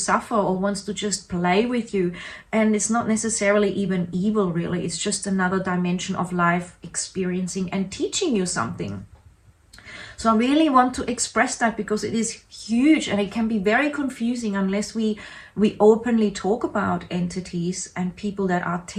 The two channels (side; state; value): both; identical; correlation 1.00